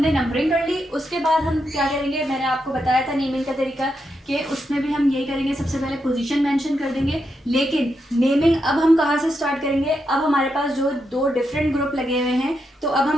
नंबरिंग कर ली। उसके बाद हम क्या करेंगे, मैंने आपको बताया था नेमिंग का तरीका कि उसमें भी हम यही करेंगे, सबसे पहले पोजीशन मेंशन कर देंगे। लेकिन नेमिंग अब हम कहाँ से स्टार्ट करेंगे, अब हमारे पास जो दो डिफरेंट ग्रुप लगे हुए हैं तो अब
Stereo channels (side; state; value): both; normal; correlation 0.83